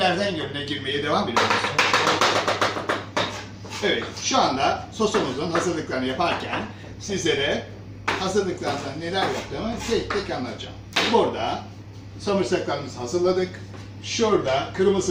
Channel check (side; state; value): both; identical; correlation 1.00